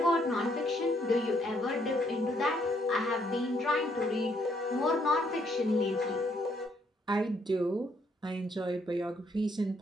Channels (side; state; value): both; normal; correlation 0.71